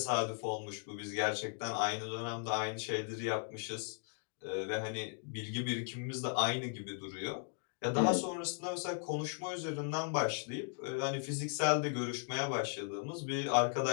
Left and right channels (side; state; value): right; silent; 53 dB below the other